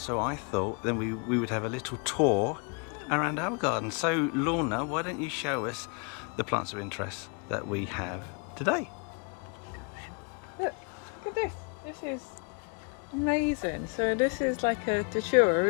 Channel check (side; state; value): right; quieter; 35.8 dB